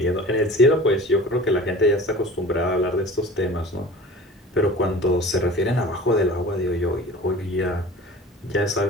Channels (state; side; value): normal; both; correlation 0.40